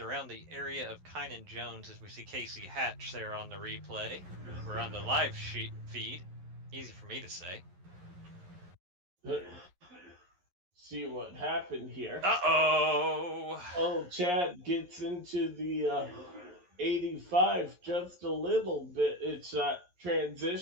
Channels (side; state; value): left; late; 11 ms